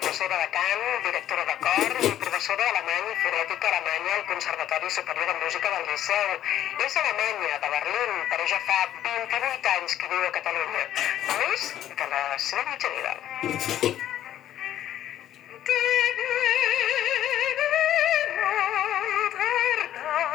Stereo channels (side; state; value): right; quieter; 11.8 dB